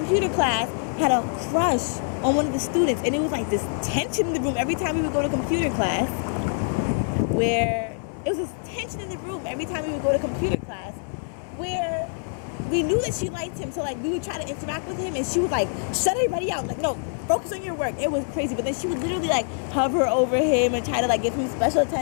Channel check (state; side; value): silent; right; 59 dB below the other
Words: class had a crush on one of the students, and it was this tension in the room every time we would go to computer class, where we knew that she liked him, so we would try to interact with him, and she would shut everybody out, no, focus on your work. It was crazy. But then she would literally hover over him and try to give him special